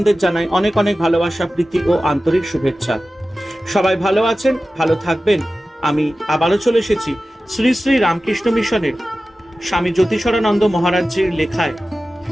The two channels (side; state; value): both; normal; correlation 0.95